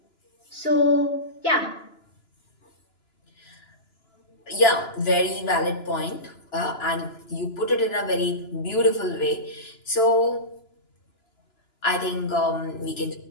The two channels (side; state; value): right; late; 2.9 ms